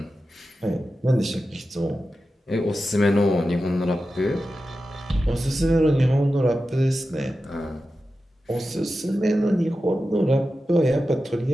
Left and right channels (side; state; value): both; normal; correlation 0.92